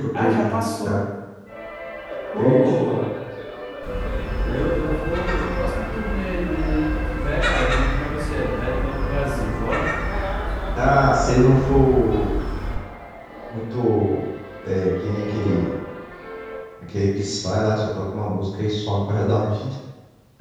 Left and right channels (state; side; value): identical; both; correlation 1.00